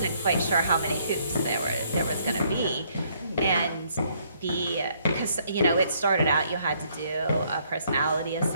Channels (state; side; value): inverted; both; correlation -0.68